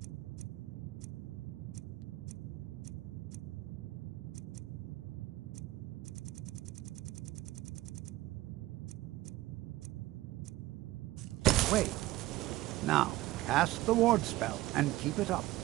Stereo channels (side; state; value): left; quieter; 17.4 dB